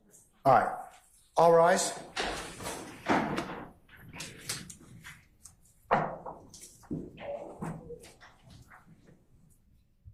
All right, all rise.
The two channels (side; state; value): both; identical; correlation 1.00